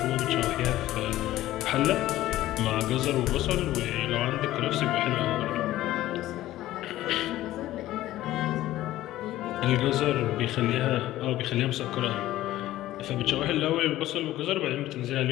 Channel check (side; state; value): right; quieter; 15.0 dB